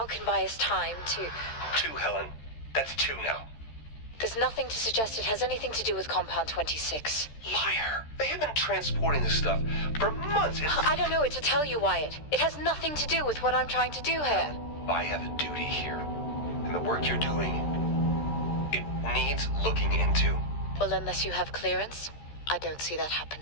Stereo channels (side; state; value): right; late; 13 ms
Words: can buy us time to... 2, Helen. That's 2 now. There's nothing to suggest it has anything to do with Compound 26. Liar. They have been transporting this stuff for months. I don't know what to tell you, Wyatt. It has nothing to do with what I'm trying to do here. I have a duty here. And the work you're doing, it needs looking into. Well, unless you have clearance, I don't see that